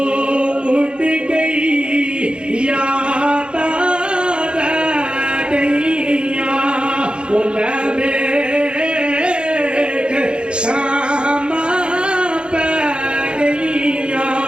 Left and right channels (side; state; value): left; late; 0.054 ms